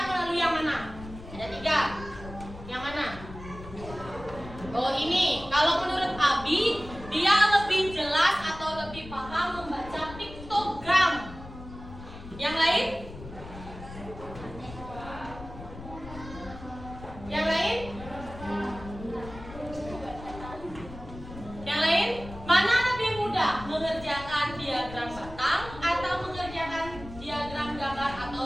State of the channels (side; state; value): left; noise; rumble, 14 dB below the sound